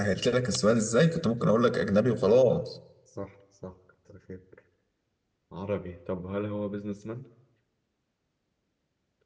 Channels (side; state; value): both; identical; correlation 1.00